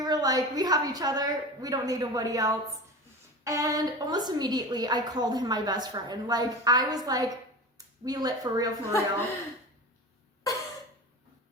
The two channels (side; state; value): both; normal; correlation 0.31